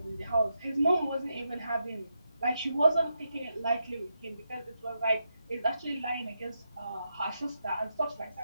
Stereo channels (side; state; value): both; inverted; correlation -0.84